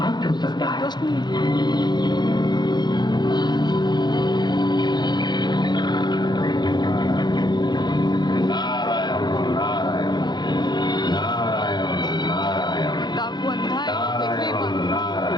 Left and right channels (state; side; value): late; right; 0.21 ms